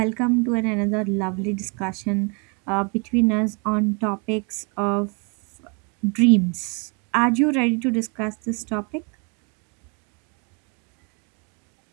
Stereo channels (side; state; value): left; quieter; 33.8 dB